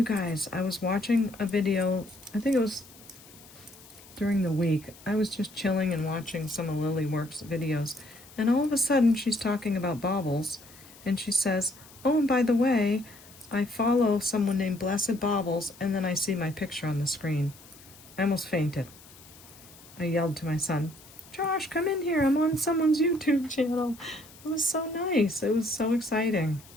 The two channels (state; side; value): noise; left; hiss, 22 dB below the sound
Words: guys, I was watching a video, I think it was during the week. I was just chilling and watching some of Lilyworks videos, and all of a sudden she's talking about Baubles, and she says, oh, and by the way, I follow someone named Blessed Baubles, and then I see my picture on the screen. I almost fainted. I yelled to my son, Josh, come in here, I'm on someone's YouTube channel. It was so nice. It was so exciting.